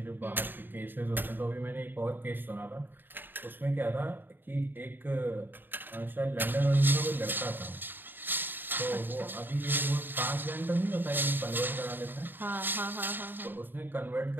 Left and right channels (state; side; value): late; left; 0.094 ms